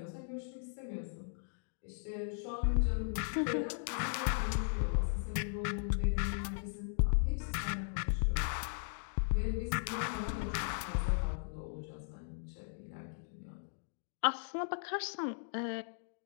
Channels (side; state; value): right; silent; digital silence